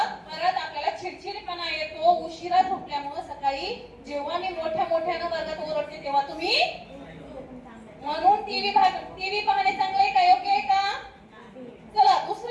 परत आपल्याला चिडचिडपणा येतो उशिरा झोपल्यामुळे. सकाळी जेव्हा मी मोठ्यानं वर्गात ओरडते तेव्हा तुम्ही म्हणून टीव्ही पाहणे चांगलं आहे का? योग्य आहे का? चला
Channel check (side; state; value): both; identical; correlation 1.00